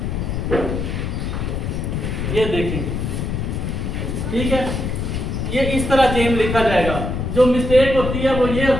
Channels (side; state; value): left; noise; rumble, 2 dB below the sound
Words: ये देखिए, ठीक है, ये इस तरह जेम लिखा जाएगा। जो मिस्टेक होती है वो ये